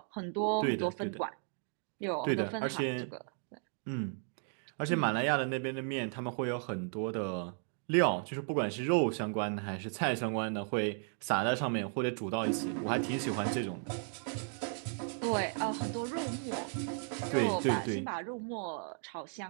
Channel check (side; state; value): left; silent; 54 dB below the other